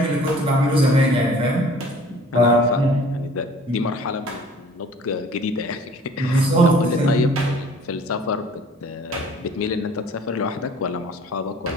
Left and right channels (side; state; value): both; normal; correlation 0.51